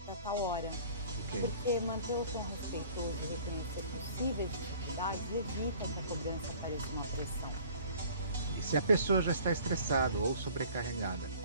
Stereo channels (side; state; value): both; inverted; correlation -0.50